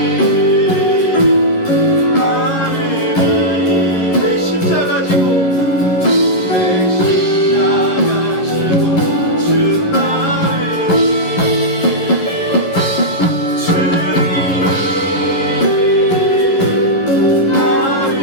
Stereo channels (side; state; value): right; late; 11 ms